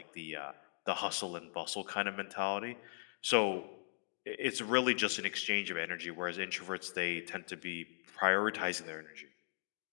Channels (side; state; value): right; silent; digital silence